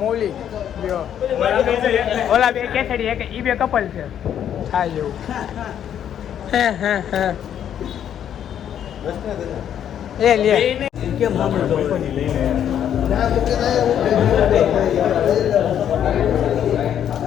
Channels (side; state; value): right; quieter; 9.7 dB